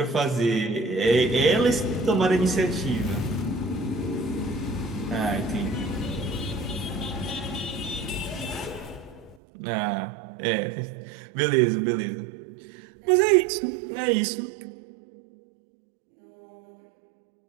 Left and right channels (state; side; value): drops out; left; at 9.3 s